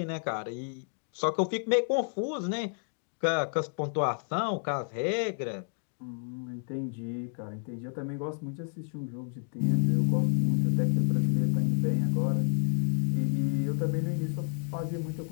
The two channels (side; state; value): right; silent; 58 dB below the other